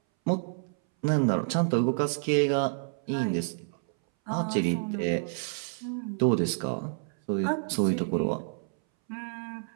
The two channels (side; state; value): left; silent; 59 dB below the other